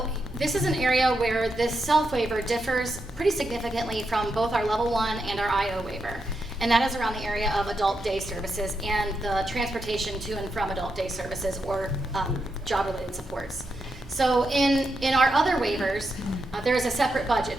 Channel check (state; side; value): normal; both; correlation 0.84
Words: this is an area where this self waiver differs pretty significantly from both our level 1 and our IO waiver. And that is around the area of adult day services and the transportation to and from adult day services or job-related supports. So in our other waivers, there is a separate